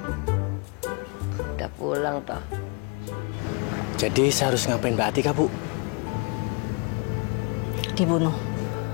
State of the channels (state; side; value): quieter; right; 33.6 dB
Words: Udah pulang toh. Jadi saya harus ngapain Mbak Atika, Bu? Dibunuh.